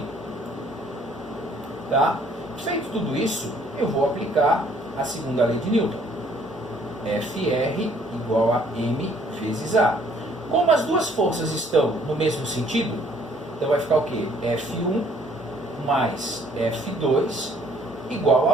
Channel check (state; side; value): normal; both; correlation 0.61